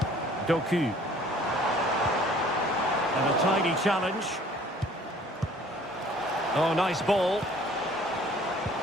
Doku. And a tidy challenge. Oh, nice ball.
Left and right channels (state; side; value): normal; both; correlation 0.54